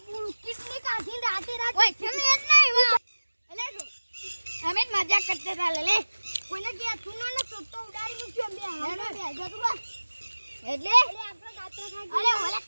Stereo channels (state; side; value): inverted; both; correlation -1.00